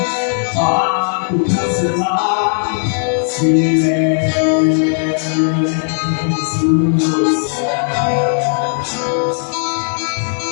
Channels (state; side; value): silent; right; 69 dB below the other